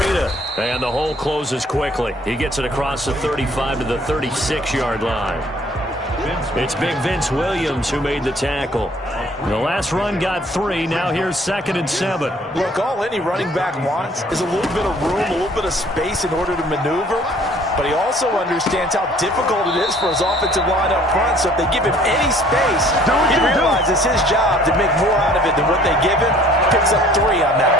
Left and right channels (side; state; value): both; normal; correlation 0.56